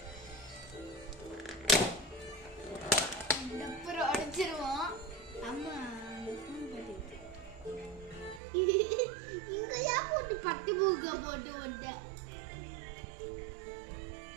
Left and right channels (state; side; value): drops out; left; at 8.4 s